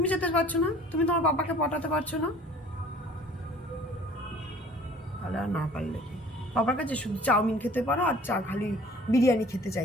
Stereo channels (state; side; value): normal; both; correlation 0.50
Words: যেতে পারছো না? তুমি তোমার বাবাকে পটাতে পারছো না? তাহলে আর না পারলে কি, বাবার কাছে শুধু চাউমিন খেতে পারো আর খালি বিরিয়ানি খেতে